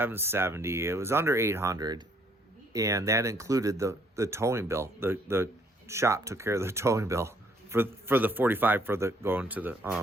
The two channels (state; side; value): normal; both; correlation 0.65